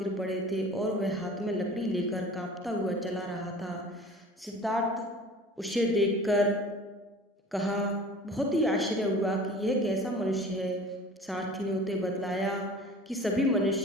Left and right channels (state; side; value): normal; both; correlation 0.43